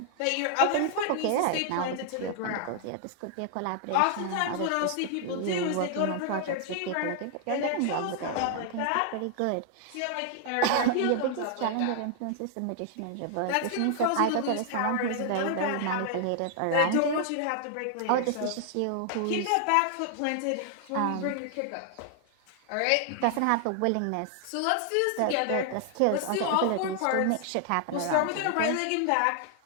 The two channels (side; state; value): both; different; correlation 0.00